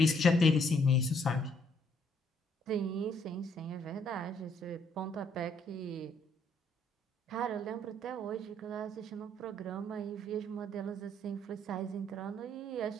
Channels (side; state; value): both; normal; correlation 0.68